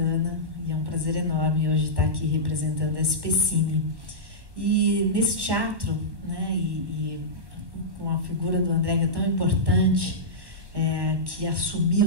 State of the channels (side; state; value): left; late; 1.2 ms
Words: e é um prazer enorme hoje estar aqui representando a SPCine. E nesse teatro, né, e com a figura do André, que é tão importante, que